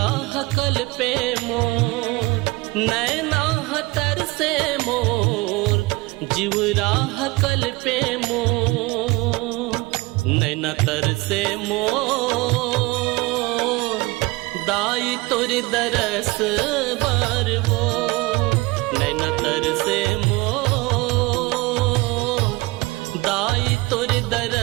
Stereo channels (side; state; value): left; quieter; 22.9 dB